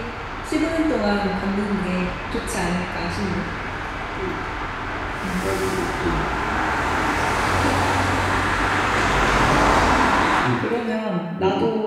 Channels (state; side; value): identical; both; correlation 1.00